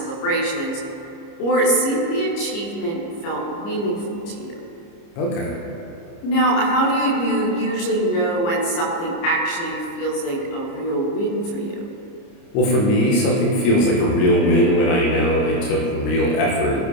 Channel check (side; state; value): right; late; 30 ms